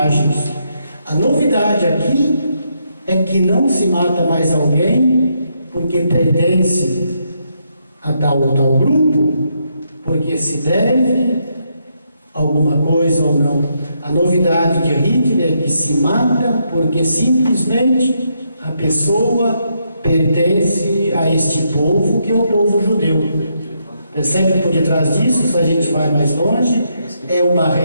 A novidade aqui é que não se mata mais alguém porque pertence a tal ou tal grupo, porque se deve alguma coisa ou não. A novidade de Hitler é que se mata porque simplesmente a pessoa pertence a este povo, que é o povo judeu. Percebe que por detrás disso, se a gente vai mais longe, é uma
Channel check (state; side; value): inverted; both; correlation -0.78